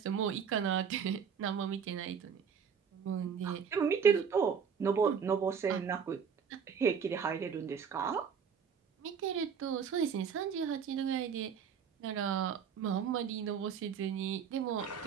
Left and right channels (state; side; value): quieter; left; 6.8 dB